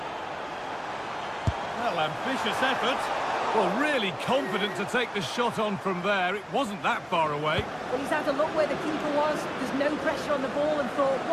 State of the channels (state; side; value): identical; both; correlation 1.00